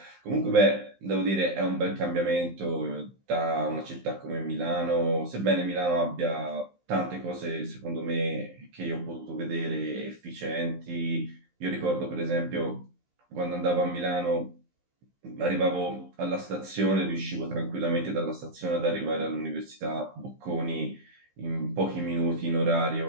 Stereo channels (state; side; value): late; left; 15 ms